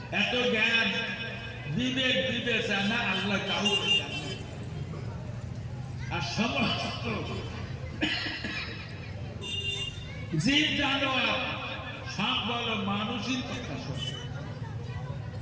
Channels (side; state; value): both; identical; correlation 1.00